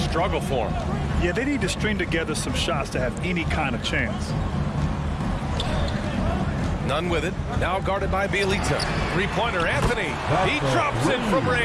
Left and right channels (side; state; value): both; identical; correlation 1.00